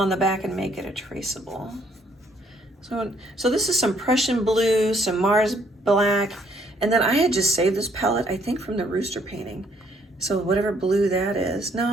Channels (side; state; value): both; normal; correlation 0.67